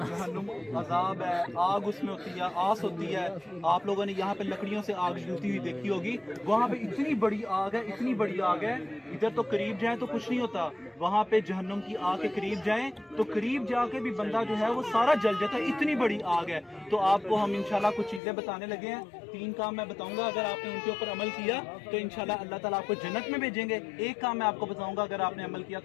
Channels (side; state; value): right; drops out; at 18.2 s